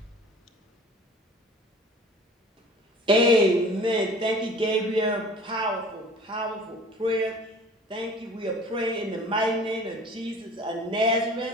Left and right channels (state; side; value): normal; both; correlation 0.45